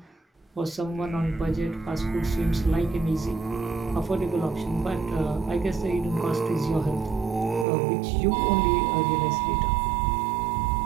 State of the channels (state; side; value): drops out; left; at 7.7 s